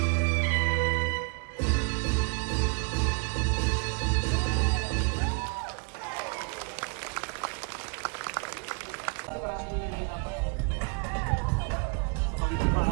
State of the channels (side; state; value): left; quieter; 35.7 dB